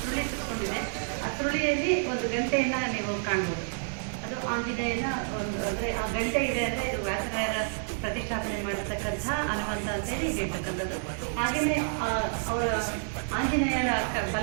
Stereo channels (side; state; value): left; silent; digital silence